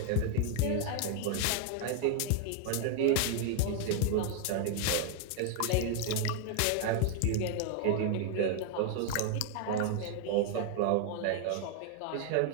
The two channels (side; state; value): both; different; correlation 0.00